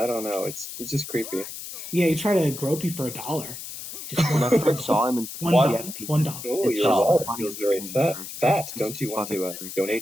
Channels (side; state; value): left; noise; hiss, 10 dB below the sound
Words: don't know. He's just creepy. Yeah, he tried to grope you for $1. When I first saw him in $1. Oh, your wallet feels very fat. Don't you want to